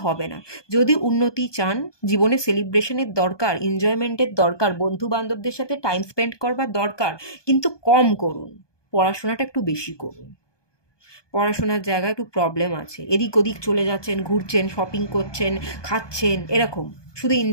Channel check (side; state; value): right; late; 1.2 ms